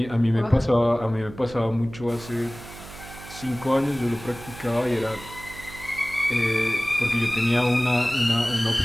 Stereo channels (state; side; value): noise; right; hum, 16 dB below the sound